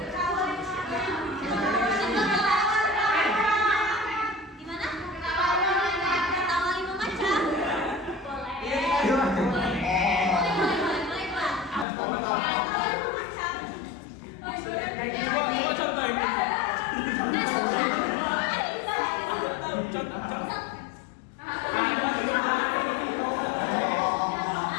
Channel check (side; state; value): right; drops out; at 11.9 s